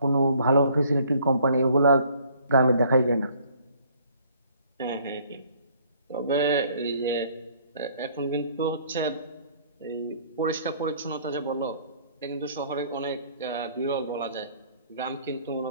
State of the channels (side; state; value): both; inverted; correlation -0.59